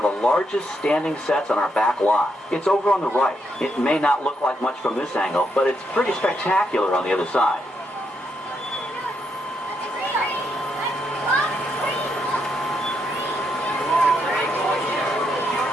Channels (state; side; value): normal; both; correlation 0.79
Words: the largest standing sets on our back lot. It's over on the right. It may not look like much from this angle, but it's pretty spectacular on the other side.